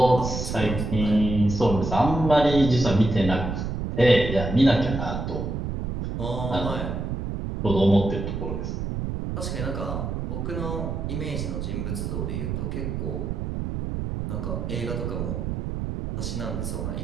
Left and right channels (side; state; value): right; noise; rumble, 3 dB below the sound